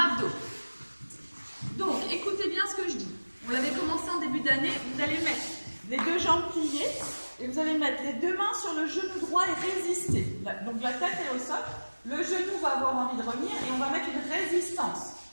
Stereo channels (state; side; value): inverted; both; correlation -1.00